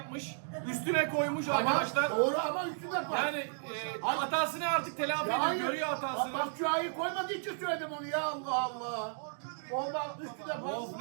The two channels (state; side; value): silent; left; digital silence